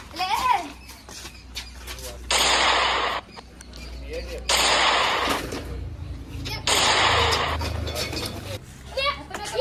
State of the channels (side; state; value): both; identical; correlation 1.00